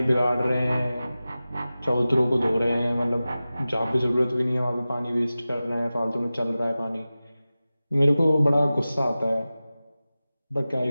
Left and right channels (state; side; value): inverted; both; correlation -0.96